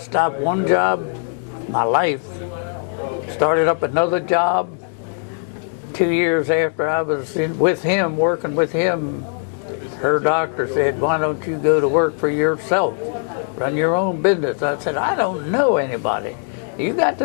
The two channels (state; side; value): silent; right; 64 dB below the other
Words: one job, my life, started up another job. 2 years after I was with him, working with him, her doctor said, why don't you go to work for yourself? Run your own business. I said, I don't know anybody. You got